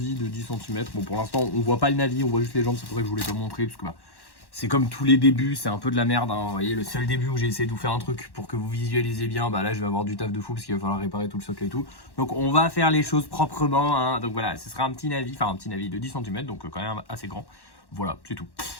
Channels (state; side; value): late; right; 1.1 ms